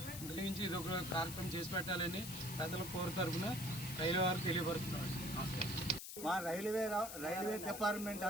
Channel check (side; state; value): left; noise; hiss, 8 dB below the sound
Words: దయించి ఇది ఒక కార్యక్రమం చేసి పెట్టాలని ప్రజల కోరు తరఫున రైల్వే వారు తెలియపరుస్తున్నారు. నమస్కారం. మా రైల్వే డిపార్ట్మెంట్